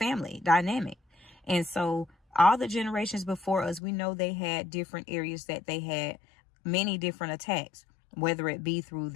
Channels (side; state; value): right; drops out; at 3.8 s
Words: dynamic. And so all the generations before us, we know they had different areas that they had many different attacks, whether it be through